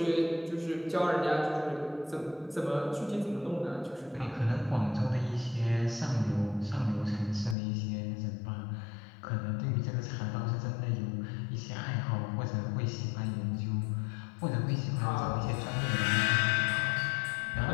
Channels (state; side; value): drops out; right; at 7.6 s